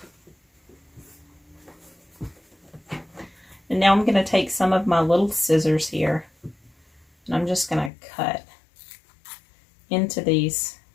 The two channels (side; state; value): right; drops out; at 7.9 s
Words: And now I'm going to take some of my little scissors here. And I'm just going to cut into these